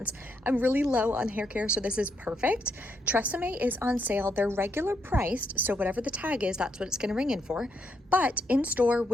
I'm really low on hair care, so this is perfect. Tresemme is on sale. They're regular priced, so whatever the tag is, that's what it's going to ring in for. But in store,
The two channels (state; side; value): normal; both; correlation 0.77